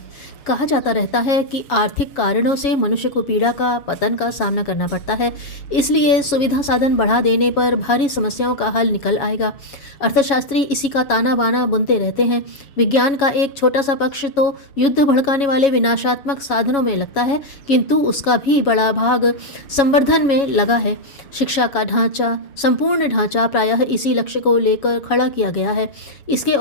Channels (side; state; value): right; late; 7.2 ms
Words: कहा जाता रहता है कि आर्थिक कारणों से मनुष्य को पीड़ा का पतन का सामना करना पड़ता है, इसलिए सुविधा साधन बढ़ा देने पर भारी समस्याओं का हल निकल आएगा। अर्थशास्त्री इसी का ताना बाना बुनते रहते हैं। विज्ञान का एक छोटा सा पक्ष तो युद्ध भड़काने वाले विनाशात्मक साधनों में लगता है, किंतु उसका भी बड़ा भाग संवर्धन में लगा है। शिक्षा का ढांचा, संपूर्ण ढांचा प्रायः इसी लक्ष्य को लेकर खड़ा किया गया है। इसके